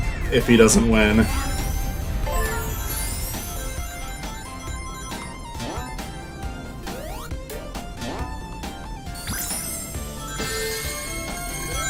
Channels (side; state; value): both; identical; correlation 1.00